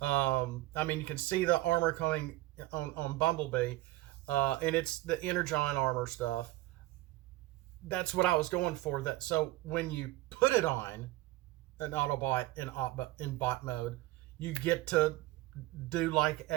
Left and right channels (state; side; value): quieter; left; 17.5 dB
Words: you can see the armor coming on Bumblebee, and it's the Energon armor stuff. That's what I was going for. So when you put it on an Autobot in bot mode, you get to do like